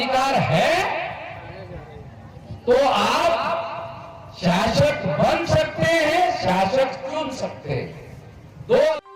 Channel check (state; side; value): identical; both; correlation 1.00